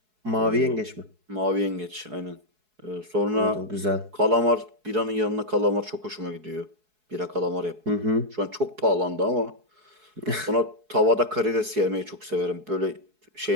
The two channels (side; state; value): left; late; 4.7 ms